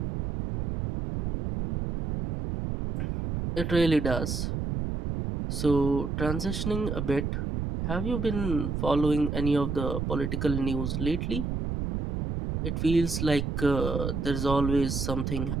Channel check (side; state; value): right; noise; rumble, 2 dB below the sound